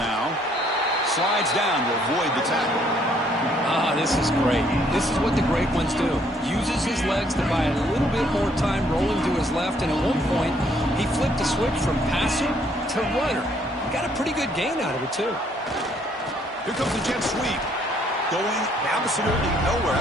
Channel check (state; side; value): normal; both; correlation 0.66